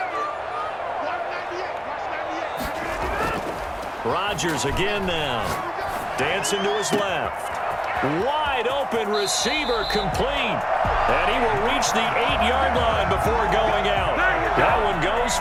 Rodgers again now. Dancing to his left. Wide open receiver complete. And he will reach the 8-yard line before going out. That one goes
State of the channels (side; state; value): both; identical; correlation 1.00